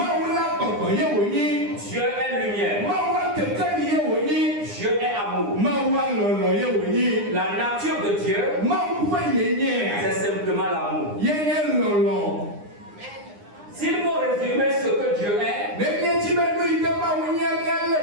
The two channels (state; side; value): late; left; 9.8 ms